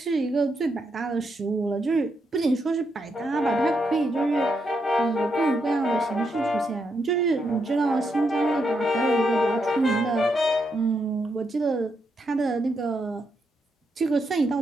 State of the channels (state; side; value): normal; both; correlation 0.81